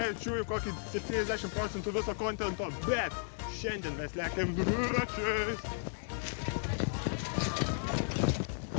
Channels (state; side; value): silent; right; digital silence